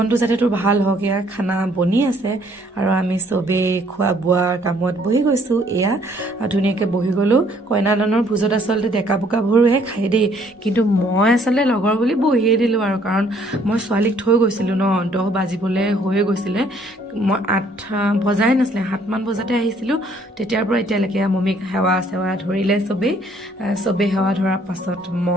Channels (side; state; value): both; normal; correlation 0.63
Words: যাতে তোৰ ভাল হওক, এয়া খানা বনি আছে আৰু আমি চবেই খোৱা বোৱাৰ কামত বহি গৈছোঁ। এয়া ধুনীয়াকৈ বহি গ'লোঁ। কইনাদানৰ ভোজত আচলতে ডেকা বোকাবোৰহে খায় দেই, কিন্তু মই আচলতে লগৰ বুলি বহিয়ে দিলোঁ আৰু, কাৰণ মই ছোৱালীক থৈ গৈছিলোঁ ন, 10 বাজিবলৈ হৈয়ে গৈছিলে। মই 8 বজাই নাছিলে, 7 মান বজাতে আহিছিলোঁ। তেতিয়াৰ পৰা এতিয়ালৈকে মমিক সেৱা চেৱা ধৰিলে চবেই সেৱা ধৰাৰ পাছত